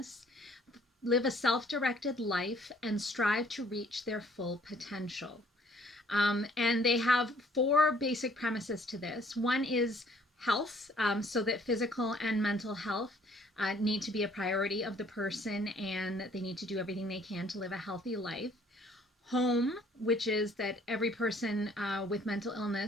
live a self-directed life, and strive to reach their full potential. And they have 4 basic premises to this. One is health, so that physical and mental health need to be a priority of the person, and they need to do everything they can to live a healthy life. Home, which is that every person with mental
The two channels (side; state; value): both; normal; correlation 0.60